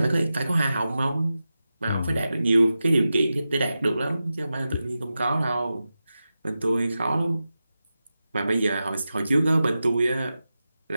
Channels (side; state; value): both; inverted; correlation -0.92